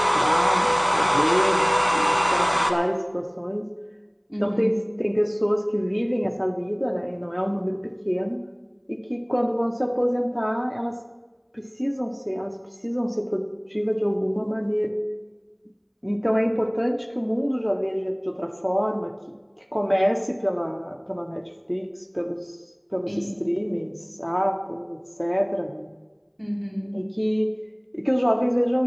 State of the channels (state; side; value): identical; both; correlation 1.00